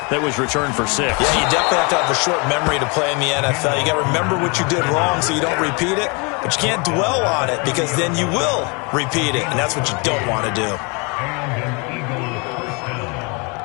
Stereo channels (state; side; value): quieter; right; 31.4 dB